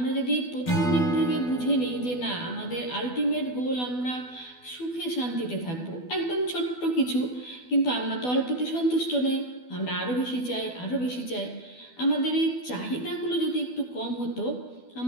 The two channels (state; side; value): late; right; 12 ms